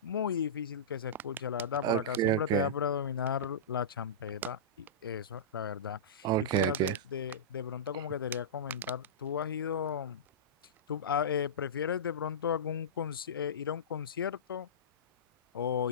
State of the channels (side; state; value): both; normal; correlation -0.18